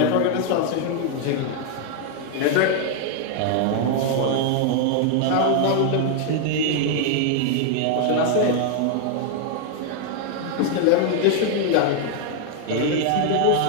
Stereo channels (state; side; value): different; both; correlation 0.00